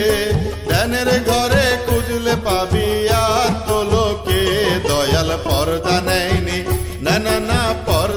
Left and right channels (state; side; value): identical; both; correlation 1.00